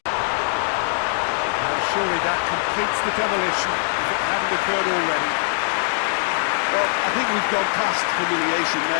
Well, surely that completes the demolition if it hadn't occurred already. Well, I think we've gone past humiliation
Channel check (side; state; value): right; silent; 64 dB below the other